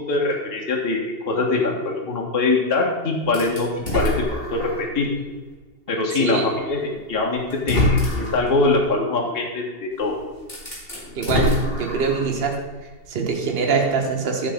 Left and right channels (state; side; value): late; left; 2.8 ms